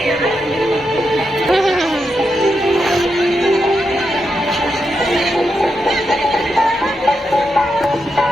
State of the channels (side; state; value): both; normal; correlation 0.85